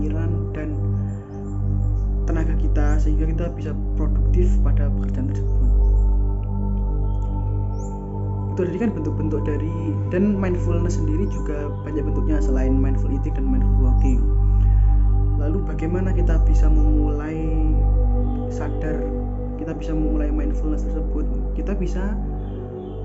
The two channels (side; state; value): both; identical; correlation 1.00